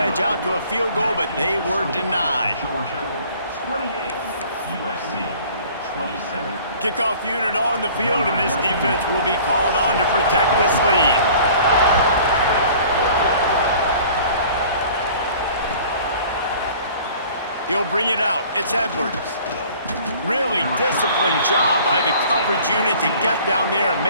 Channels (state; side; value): inverted; both; correlation -0.49